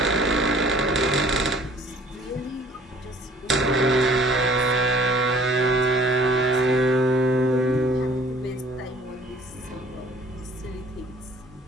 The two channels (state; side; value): normal; both; correlation 0.55